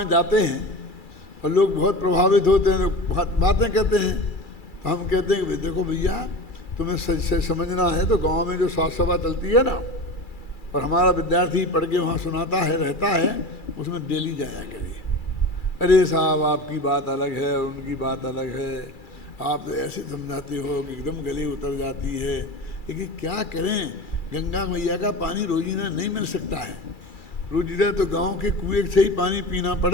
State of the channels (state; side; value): late; right; 2.3 ms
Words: जाते हैं और लोग बहुत प्रभावित होते हैं, बातें कहते हैं, तो हम कहते हैं कि देखो भैया, तुम्हें समझना है तो गांव में जो साथ सभा चलती है ना, और हमारा विद्यार्थी पढ़ के वहाँ सुनाता है, रहता है, उसमें डेली जाया करिए। अरे साहब, आपकी बात अलग है और उनकी बात अलग है, आप तो ऐसे समझाते हो कि एकदम गले उतर जाती है। लेकिन क्या करें, गंगा मैया का पानी रोजीना नहीं मिल सकता है। रोजीना तो गांव के कुएं से ही पानी पीना